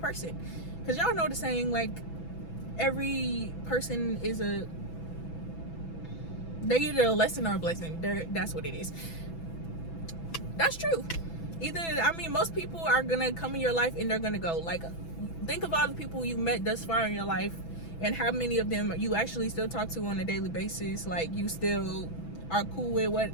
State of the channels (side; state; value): right; late; 6.0 ms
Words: Because y'all know the saying, like, every person is they're either a lesson or a blessing. That's what it is. That's true. Either, I mean, most people are gonna come in your life and they're gonna go. Like, think of all the people you met thus far in your life and how many of them you actually still talk to on a daily basis. Like, you still are cool with